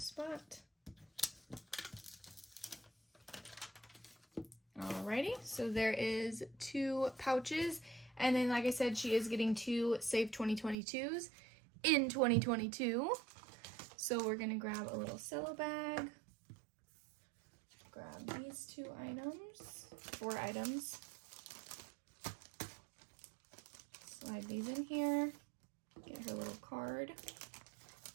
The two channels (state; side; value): drops out; left; at 10.8 s